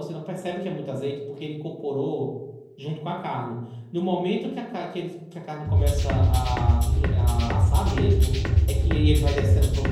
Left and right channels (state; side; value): identical; both; correlation 1.00